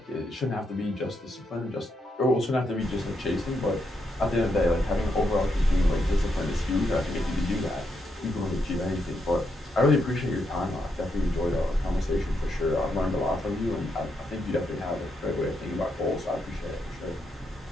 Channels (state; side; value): normal; both; correlation 0.80